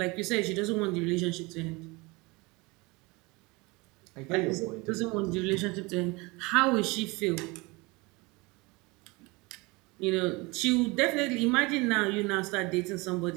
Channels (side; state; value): left; quieter; 25.1 dB